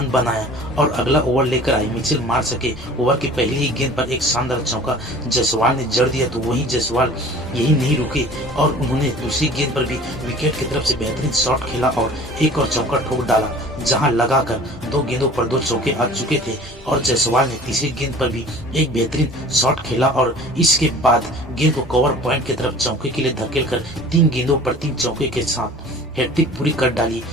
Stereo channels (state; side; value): normal; both; correlation 0.45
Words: बनाया और अगला ओवर लेकर आई मिचेल मार्श के ओवर की पहली ही गेंद पर एक शानदार चौका जायसवाल ने जड़ दिया। तो वहीं जायसवाल यही नहीं रुके और उन्होंने दूसरी गेंद पर भी विकेट की तरफ से बेहतरीन शॉट खेला और एक और चौका ठोक डाला, जहां लगाकर 2 गेंदों पर 2 चौके आ चुके थे और जायसवाल ने तीसरी गेंद पर भी एक बेहतरीन शॉट खेला और इसके बाद गेंद को कवर पॉइंट की तरफ चौके के लिए धकेलकर 3 गेंदों पर 3 चौके के साथ हैट्रिक पूरी कर डाली।